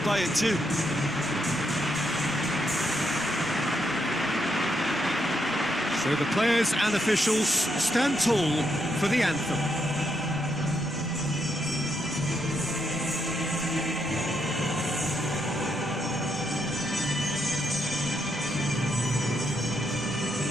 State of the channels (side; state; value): both; normal; correlation 0.79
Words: by it too. So the players and officials stand tall for the anthem.